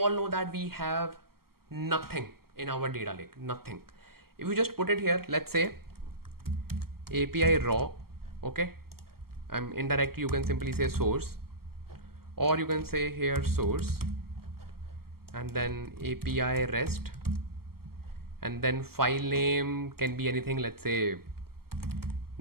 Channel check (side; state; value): left; late; 0.94 ms